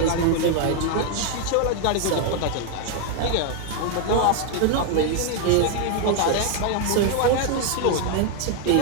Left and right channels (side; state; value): both; different; correlation 0.00